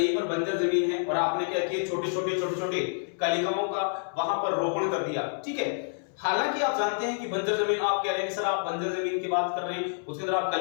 पर बंजर जमीन है और आपने क्या किया, छोटे छोटे कलिकाओं का वहां पर रोपण कर दिया। ठीक है, हालांकि आप जानते हैं कि बंजर जमीन, आप कह रहे हैं कि सर आप बंजर जमीन की बात कर रहे हैं, उसके अंदर आप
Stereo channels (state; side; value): silent; right; 59 dB below the other